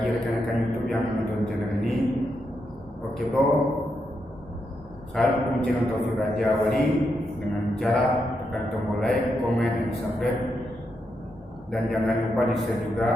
rekan-rekan YouTube yang menonton channel ini. Oke bro, saya dukung channel Taufik Raja Wali dengan cara tekan tombol like, komen, dan subscribe, dan jangan lupa di share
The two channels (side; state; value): both; normal; correlation 0.83